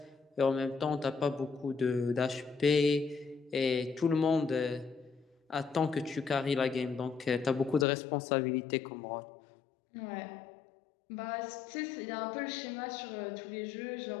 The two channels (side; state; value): right; drops out; at 7.9 s